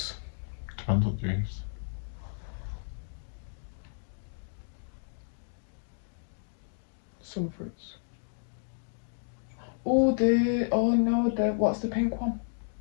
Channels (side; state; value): right; silent; digital silence